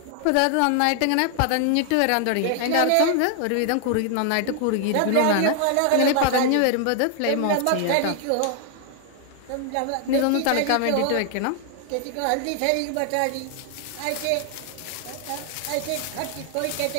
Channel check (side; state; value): both; different; correlation 0.00